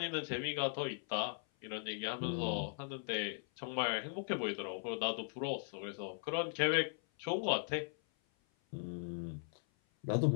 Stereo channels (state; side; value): silent; right; 52 dB below the other